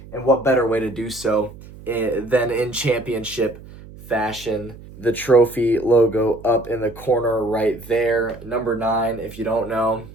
And what better way to do so than in championship fashion. The trophy logo up in the corner right there. Number 9, if you don't know,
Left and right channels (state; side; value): noise; right; hum, 18 dB below the sound